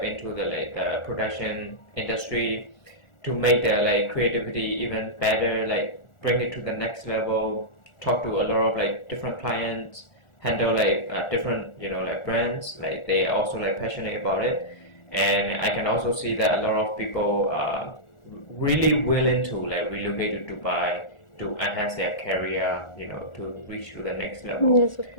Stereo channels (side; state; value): right; late; 1.4 ms